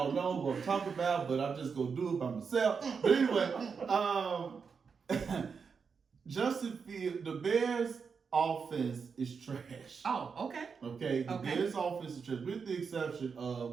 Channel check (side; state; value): left; quieter; 5.7 dB